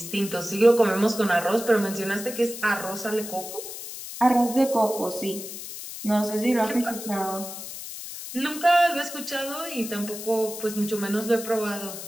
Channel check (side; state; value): left; noise; hiss, 10 dB below the sound